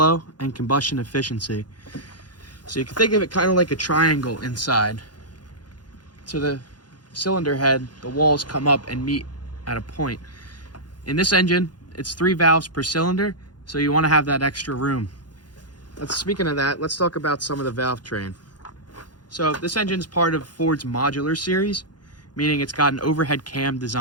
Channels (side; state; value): right; late; 0.70 ms